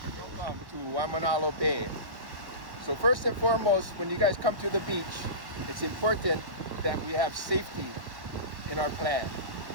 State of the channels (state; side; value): late; left; 1.1 ms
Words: Welcome to Waimanalo Bay. So first and foremost, when you guys come to the beach, it's important that we have safety in our plan.